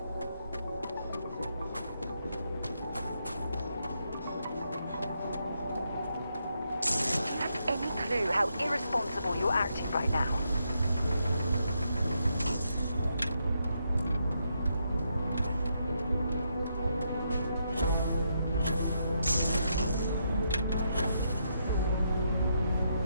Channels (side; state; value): both; inverted; correlation -0.79